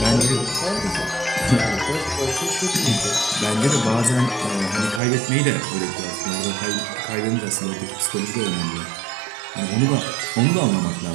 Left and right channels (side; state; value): left; drops out; at 5.0 s